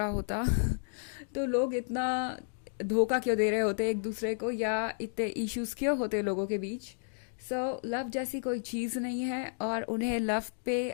होता तो लोग इतना धोखा क्यों दे रहे होते एक दूसरे को या इतने इश्यूज क्यों होते लोगों के बीच। सो लव जैसी कोई चीज़ नहीं है और उन्हें लव पे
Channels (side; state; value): right; silent; digital silence